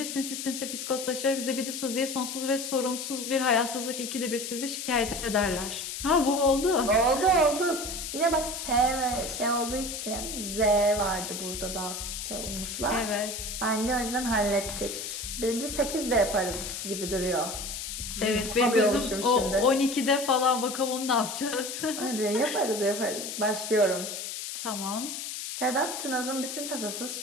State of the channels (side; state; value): left; noise; hiss, 6 dB below the sound